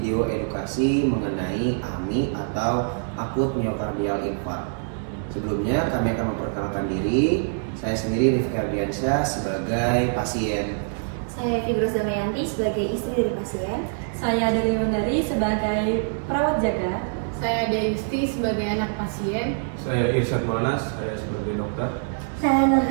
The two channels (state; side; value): silent; left; digital silence